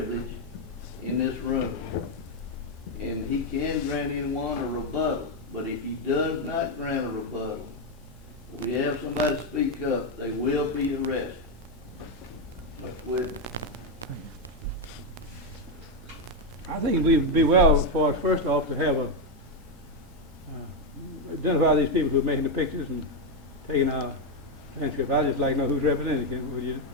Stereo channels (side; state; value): both; normal; correlation 0.05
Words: in this room. And he can grant anyone a rebuttal, but if he does not grant a rebuttal, we have somebody speak up, they will be arrested. Mr. Whitten. I think we'd be well for us, first off, to have identify these people who are making the pictures and taking our transcript. I'd just like to know who's representing them. Would you